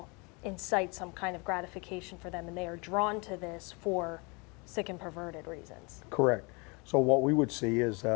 incite some kind of gratification for them, and they are drawn to this for sick and perverted reasons. Correct. So what we would see is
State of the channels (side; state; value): right; quieter; 29.9 dB